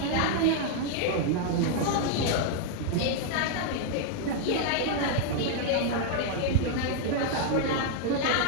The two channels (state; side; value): different; both; correlation 0.00